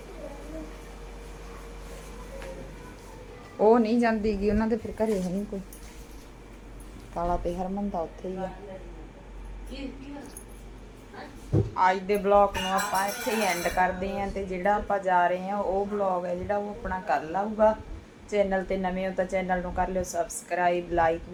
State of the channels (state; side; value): identical; both; correlation 1.00